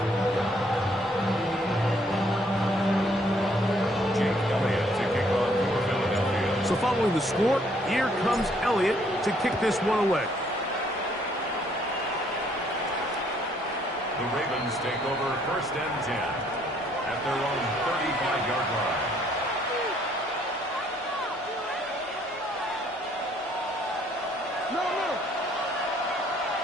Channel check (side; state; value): both; normal; correlation 0.65